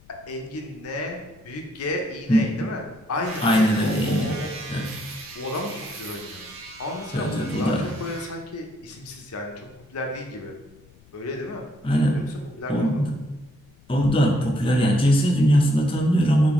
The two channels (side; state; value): left; noise; rumble, 27 dB below the sound